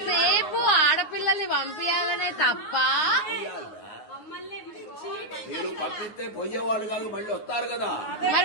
ఆడపిల్లల్ని పంపించాలనే తప్ప మీరు పంపిస్తే పోయేవాళ్ళు కాదు, మళ్ళీ వస్తారు కదా.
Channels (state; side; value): late; right; 9.5 ms